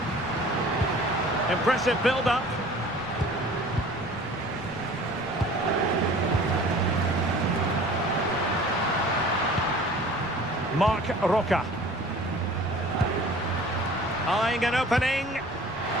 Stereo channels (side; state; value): left; noise; rumble, 21 dB below the sound